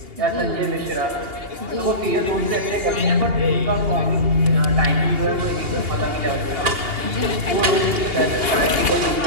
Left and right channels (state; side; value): late; left; 2.8 ms